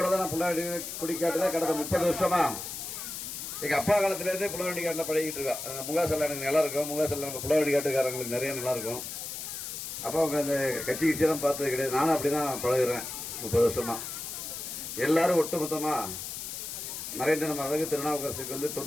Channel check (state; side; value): noise; left; hiss, 7 dB below the sound